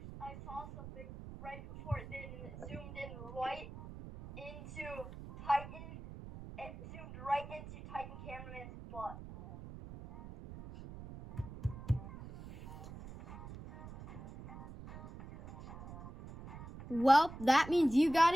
I saw something right before it did, and it zoomed in right into Titan. It zoomed right into Titan Cameraman's butt. Well, that means you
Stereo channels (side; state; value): right; noise; rumble, 13 dB below the sound